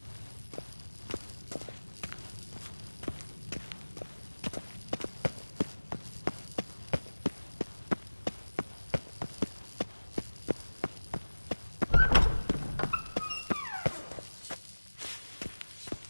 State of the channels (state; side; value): inverted; both; correlation -1.00